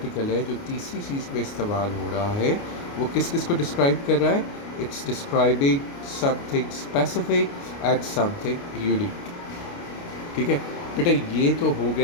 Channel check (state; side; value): late; right; 29 ms